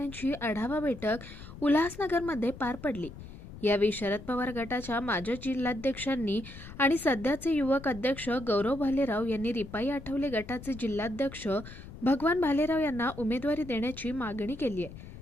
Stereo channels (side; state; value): left; noise; rumble, 14 dB below the sound